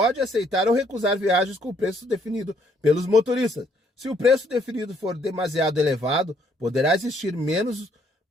aceitar ou recusar viagens com o preço definido pelos motoristas. Se o preço definido for demasiado elevado, poderá existir menos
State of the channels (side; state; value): both; normal; correlation 0.67